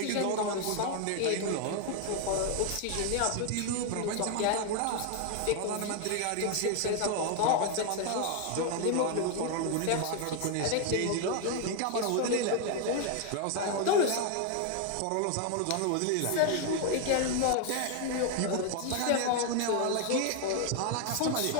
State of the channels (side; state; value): both; different; correlation 0.00